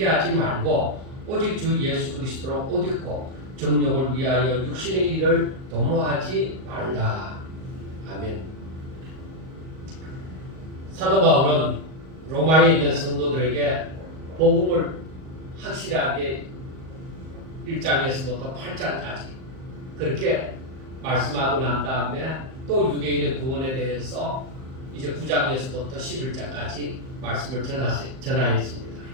말고 오직 주 예수 그리스도로 옷 입고 정욕을 위하여 육신의 일을 도모하지 말라. 아멘. 사도 바울은 로마에 있는 성도들에게 복음을 확실하게 1장에서부터 8장까지 그렇게 말씀하고 난 다음에 또 유대인의 구원에 대해서 이제 9장에서부터 11장까지 말씀을 전하였습니다.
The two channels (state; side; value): late; left; 38 ms